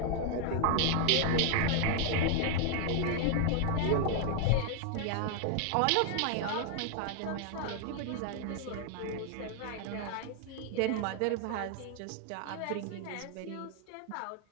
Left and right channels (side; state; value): both; different; correlation 0.00